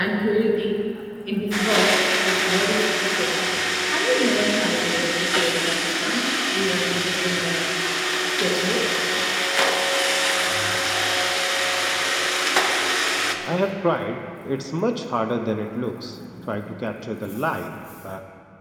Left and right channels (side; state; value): both; identical; correlation 1.00